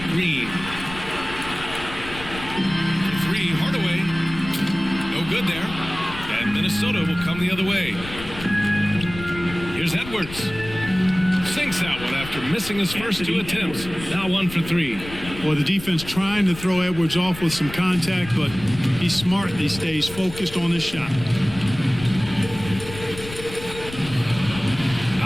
Green. For 3, Hardaway. No good there. And Minnesota will come the other way. Here's Edwards. Sinks that one after missing his first 2 attempts. Now 1 for 3. Well, the defense trying to throw Edwards off with some contact, but he's smart. He stays focused on his shot.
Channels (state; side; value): noise; left; rumble, 13 dB below the sound